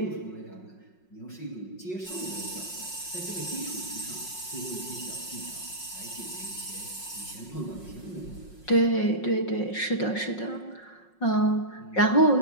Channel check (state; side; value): late; right; 5.5 ms